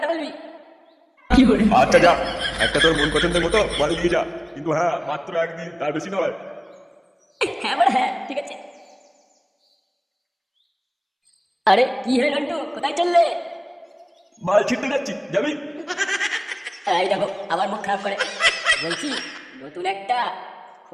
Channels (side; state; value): both; identical; correlation 1.00